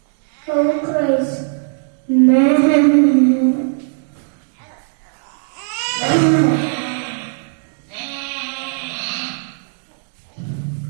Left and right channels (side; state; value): left; silent; digital silence